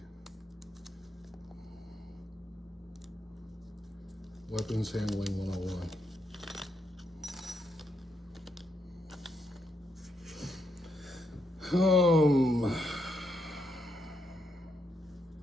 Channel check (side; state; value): both; normal; correlation 0.79